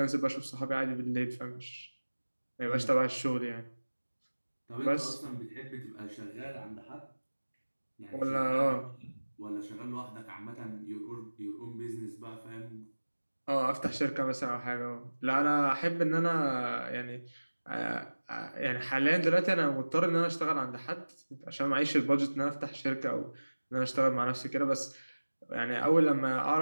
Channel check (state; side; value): inverted; both; correlation -1.00